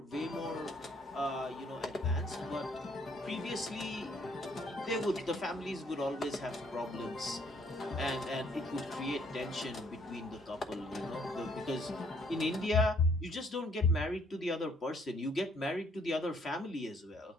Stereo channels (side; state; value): both; normal; correlation 0.65